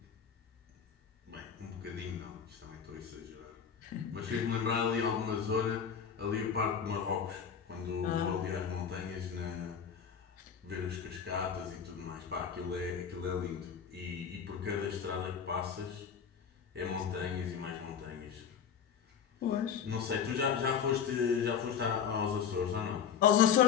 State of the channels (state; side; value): quieter; right; 7.5 dB